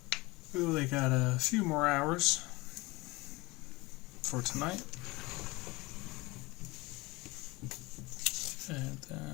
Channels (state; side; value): quieter; right; 22.7 dB